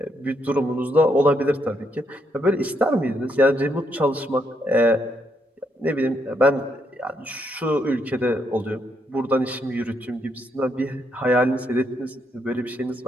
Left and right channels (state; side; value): normal; both; correlation 0.76